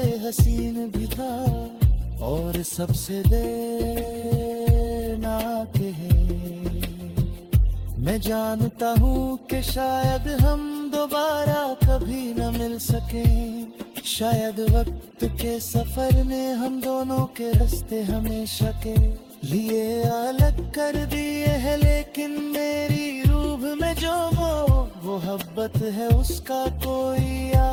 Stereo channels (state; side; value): identical; both; correlation 1.00